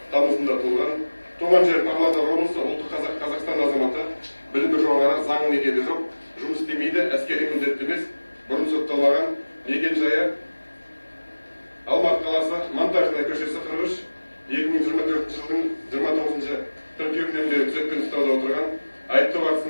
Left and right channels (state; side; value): inverted; both; correlation -1.00